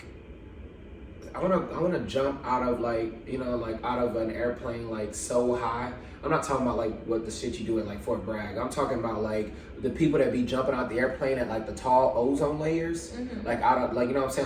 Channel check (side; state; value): both; identical; correlation 1.00